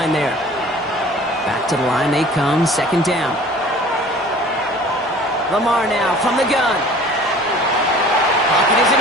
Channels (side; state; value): both; normal; correlation 0.47